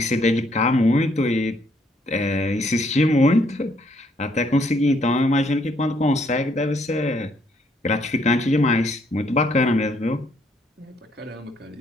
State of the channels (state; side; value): normal; both; correlation 0.69